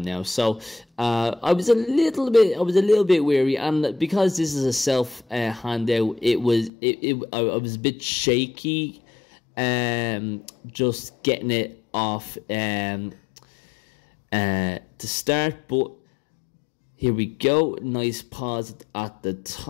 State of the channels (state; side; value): drops out; right; at 6.7 s